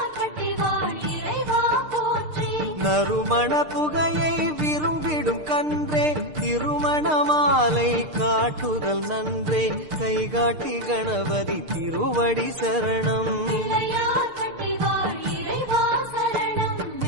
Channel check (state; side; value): late; left; 6.6 ms